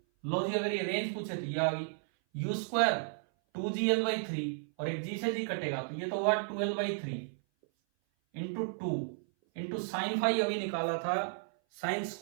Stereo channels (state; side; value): silent; left; 55 dB below the other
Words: लो जी, अगर ये रेंज पूछे तो ये आ गई u², 2gl/3 और एक g से g कटेगा तो ये तो हुआ 2l/3 into 2 into sine phi अभी निकाला था, साइन